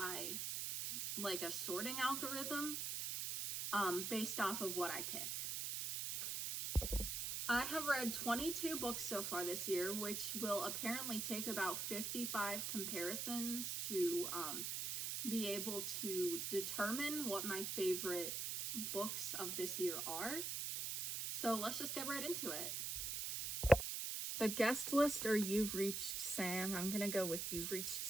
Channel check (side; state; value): right; noise; hiss, 2 dB below the sound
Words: like a sorting algorithm based off of what I pick. I have read 22 books so far this year, which will apparently take about 55 comparisons to be able to determine what my favorite books of this year are. So let's just get right into it. The guest list or You've Reached Sam. I'm gonna go with You've Reached